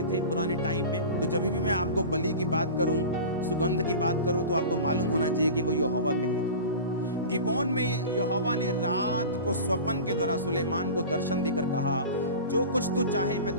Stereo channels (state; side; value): inverted; both; correlation -0.33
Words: थे पुराने टाइम में। तो जब भी मैं आपको बलि की बात करूं, सुगंध की बात करूं, तो आपको मालूम होना चाहिए कि वो यहोवा के लिए था। गिबोन में यहोवा ने रात को स्वप्न के द्वारा सुलेमान को दर्शन देकर कहा, जो कुछ तू चाहे मैं